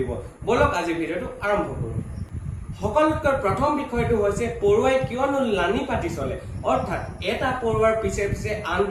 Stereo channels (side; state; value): both; identical; correlation 1.00